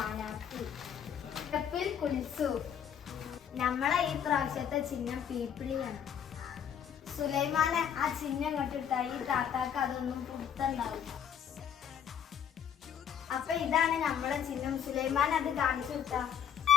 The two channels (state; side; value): quieter; right; 8.6 dB